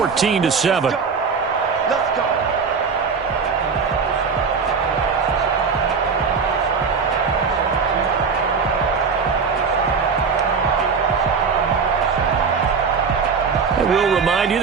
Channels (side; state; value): left; quieter; 5.5 dB